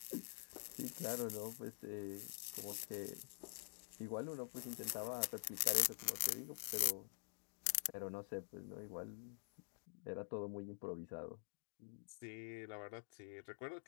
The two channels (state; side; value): silent; right; digital silence